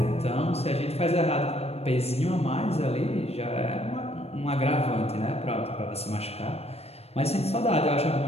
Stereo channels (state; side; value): late; right; 0.30 ms